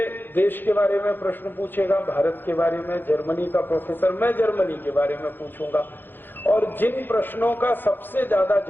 देश के बारे में प्रश्न पूछेगा, भारत के बारे में, जर्मनी का प्रोफेसर, मैं जर्मनी के बारे में पूछूंगा। और जिन प्रश्नों का सबसे ज्यादा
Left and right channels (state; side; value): late; right; 0.095 ms